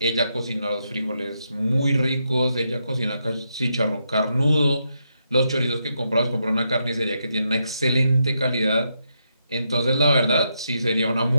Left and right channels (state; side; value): inverted; both; correlation -0.81